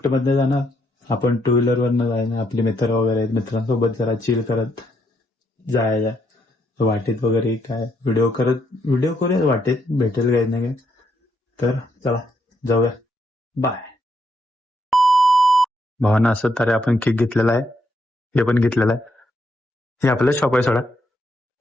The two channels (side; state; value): both; normal; correlation 0.76